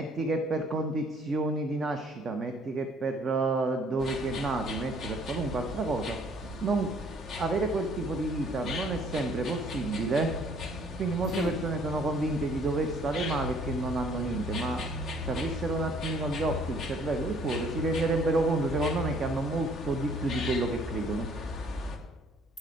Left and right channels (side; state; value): both; normal; correlation 0.59